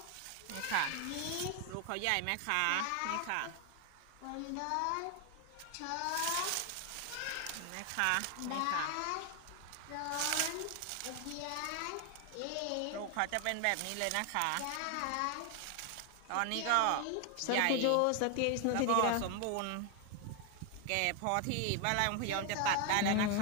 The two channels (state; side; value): different; both; correlation 0.01